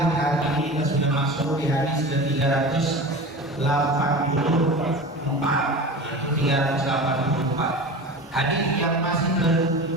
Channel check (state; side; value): normal; both; correlation 0.32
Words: hari ini kita sudah masuk di hadis ke-384, yaitu 384 hadis yang masih